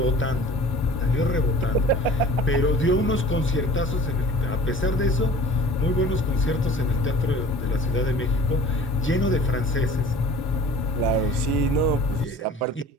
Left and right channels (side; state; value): both; normal; correlation 0.44